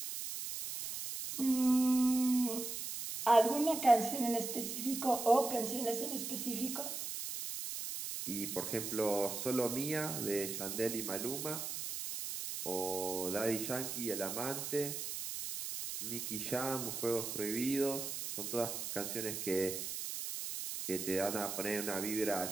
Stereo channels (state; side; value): noise; right; hiss, 5 dB below the sound